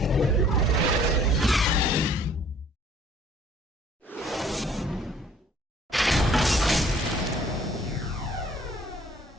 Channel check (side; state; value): both; normal; correlation 0.56